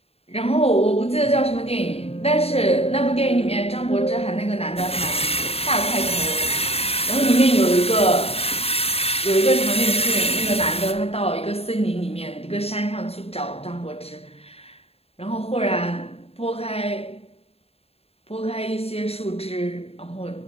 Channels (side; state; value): right; late; 0.29 ms